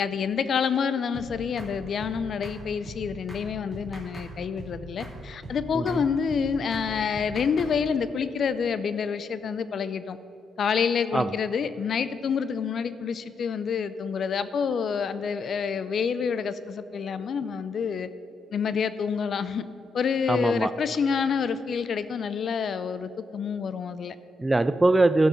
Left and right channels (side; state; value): right; quieter; 3.7 dB